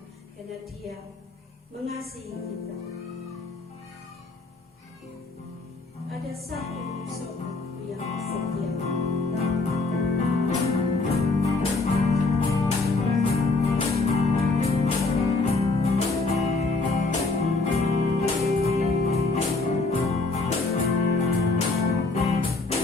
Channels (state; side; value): quieter; right; 3.5 dB